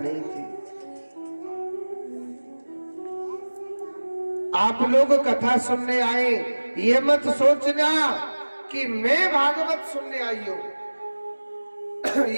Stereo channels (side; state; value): both; inverted; correlation -1.00